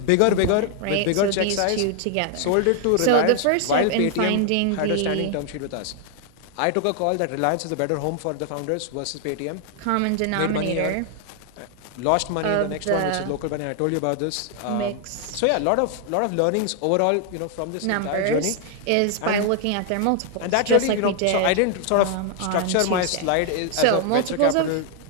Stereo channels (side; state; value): both; different; correlation 0.00